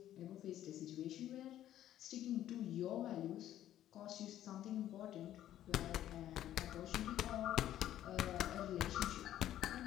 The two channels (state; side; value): quieter; right; 12.3 dB